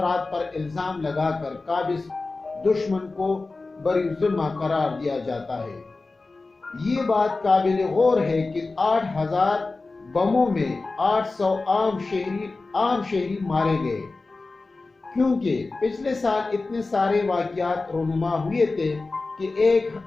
پر الزام لگا کر قابض دشمن کو بری ذمہ قرار دیا جاتا ہے۔ یہ بات قابل غور ہے کہ 8,000 بموں میں 800 عام شہری مارے گئے، کیونکہ پچھلے سال اتنے سارے واقعات رونما ہوئے تھے کہ ایک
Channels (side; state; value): right; quieter; 3.6 dB